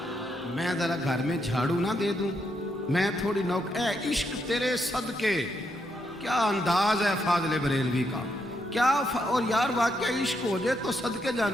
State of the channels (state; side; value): normal; both; correlation 0.79